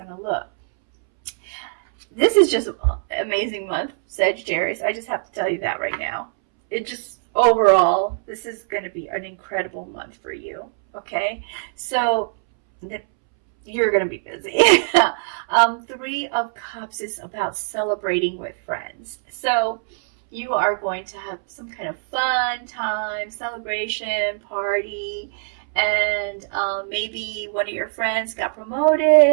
to look. This is just an amazing month, Sagittarius. I just have to tell you that right now. Overall, this is going to be an incredible month for you, okay? So you're going to be busy. 3 of Cups is about celebrating with friends. So, you are going to have some kind of fun time, celebration, party, and maybe one of your friends got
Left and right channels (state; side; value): silent; left; 64 dB below the other